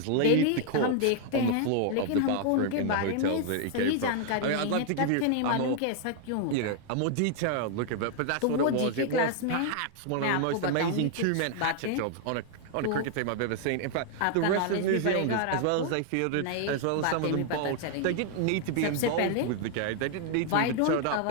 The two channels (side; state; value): both; different; correlation 0.00